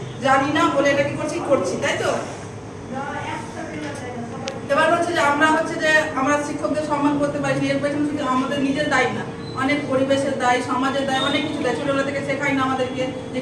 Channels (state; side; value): identical; both; correlation 1.00